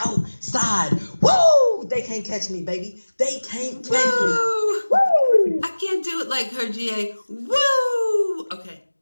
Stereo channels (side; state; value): both; inverted; correlation -1.00